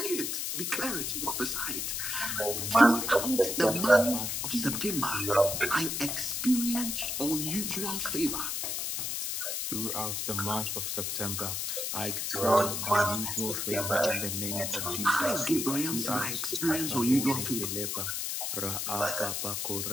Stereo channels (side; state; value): left; noise; hiss, 2 dB below the sound